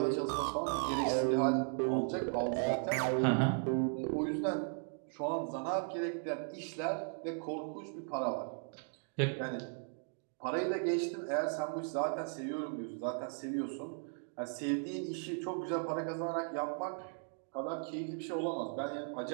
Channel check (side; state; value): left; silent; 53 dB below the other